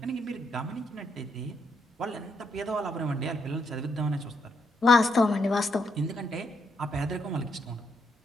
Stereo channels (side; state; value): both; normal; correlation 0.77